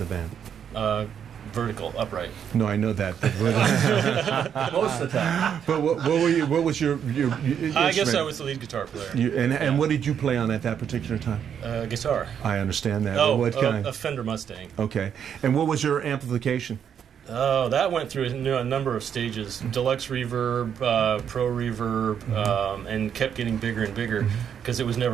band? Vertical, upright. No, I know that. Most of the time. But what was your I guess I was the lead guitar player. And what did you play on at that particular time? Guitar. I understand that. Oh, what kind? A Fender Mustang. Okay. And what was your amplification? Oh, that went through a number of stages. Deluxe reverb, pro reverb, and kept getting bigger and bigger because it was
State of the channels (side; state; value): left; quieter; 8.3 dB